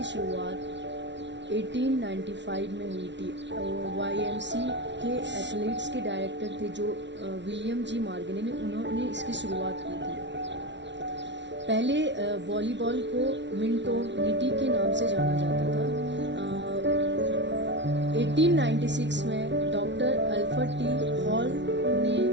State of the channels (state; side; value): late; left; 0.51 ms